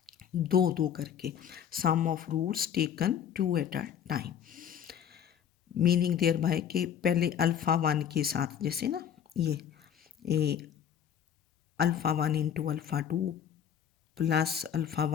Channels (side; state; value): right; quieter; 8.9 dB